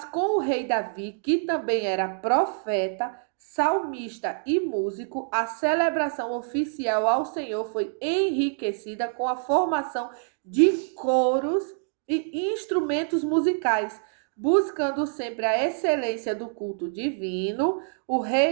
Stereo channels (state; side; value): silent; left; 61 dB below the other